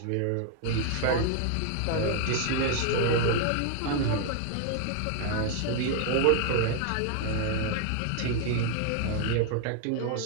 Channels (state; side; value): different; both; correlation 0.00